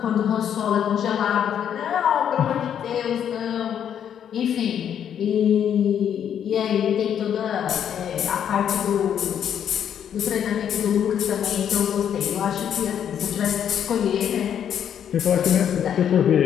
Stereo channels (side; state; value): right; quieter; 9.0 dB